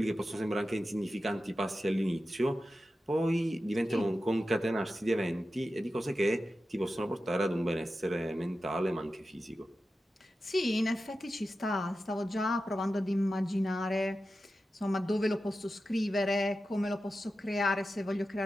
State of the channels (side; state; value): both; normal; correlation 0.92